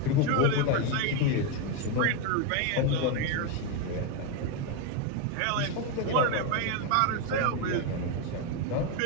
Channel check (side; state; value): both; different; correlation 0.02